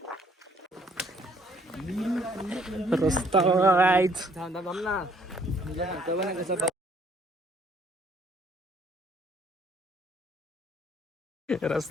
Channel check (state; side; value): normal; both; correlation 0.63